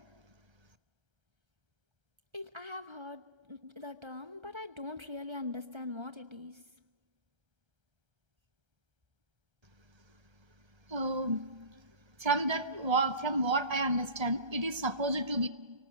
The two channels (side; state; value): left; late; 1.3 ms